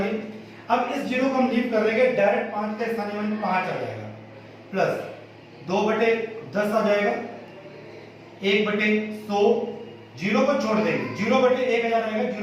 अब इस जीरो को हम लीव कर देंगे, डायरेक्ट 5 का स्थानीय मान 5 आ जाएगा प्लस 2/10 आ जाएगा, 1/100 जीरो को छोड़ देंगे, 0/1000 आएगा,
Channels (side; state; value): both; identical; correlation 1.00